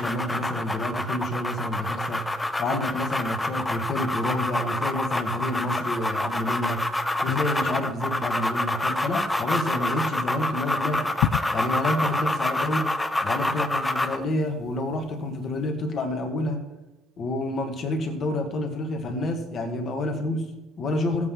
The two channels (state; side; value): normal; both; correlation 0.71